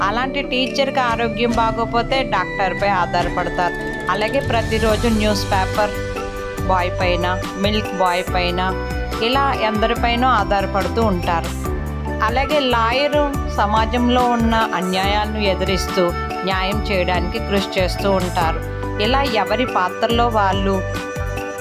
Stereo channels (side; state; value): both; identical; correlation 1.00